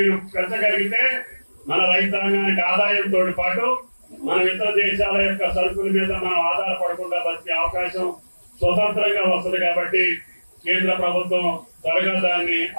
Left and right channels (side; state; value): both; inverted; correlation -1.00